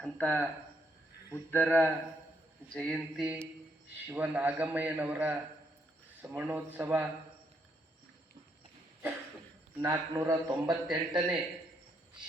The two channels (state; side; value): normal; both; correlation 0.75